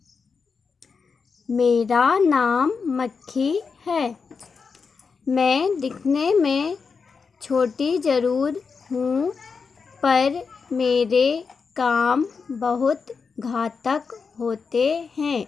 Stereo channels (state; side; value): quieter; right; 5.3 dB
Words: मेरा नाम मक्खी है। मैं दिखने में छोटी ज़रूर हूँ, पर मेरे काम बहुत घातक होते हैं।